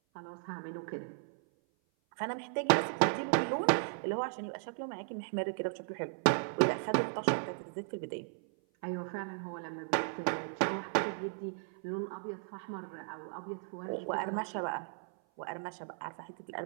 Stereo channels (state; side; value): silent; left; 54 dB below the other